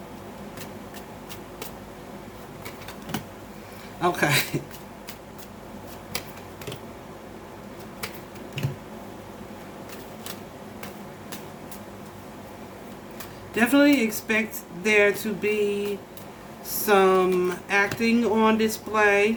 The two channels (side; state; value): both; identical; correlation 1.00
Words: Okay. Definitely expect there to be some acting on